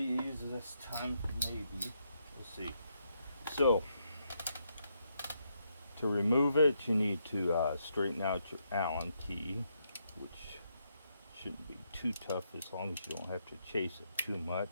this time maybe. Let's see. So to remove it, you need to straighten out your Allen key, which shouldn't be too tough as long as you don't have to chase it too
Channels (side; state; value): both; inverted; correlation -0.79